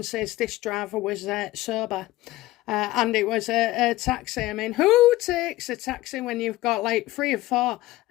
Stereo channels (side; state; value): right; quieter; 17.3 dB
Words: is this driver was sober, and it was a taxi. I mean, who takes a taxi when you've got like 3 or 4